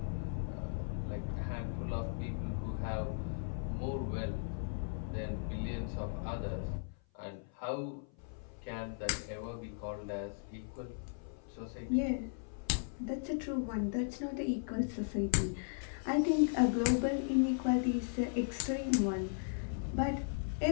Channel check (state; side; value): silent; right; 53 dB below the other